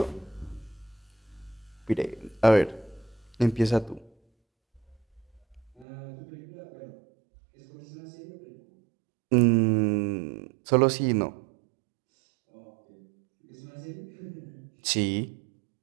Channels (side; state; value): left; drops out; at 5.9 s